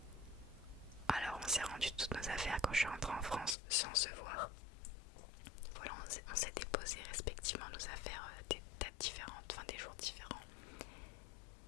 Alors on s'est rendu toutes nos affaires quand je suis rentrée en France sans se voir. Voilà, on s'est déposé respectivement nos affaires des dates différentes, enfin des jours différents.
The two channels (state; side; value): drops out; right; at 3.6 s